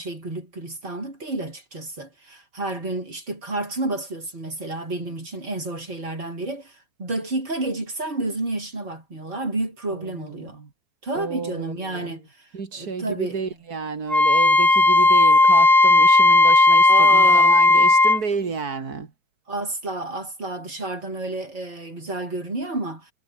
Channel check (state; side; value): late; left; 4.6 ms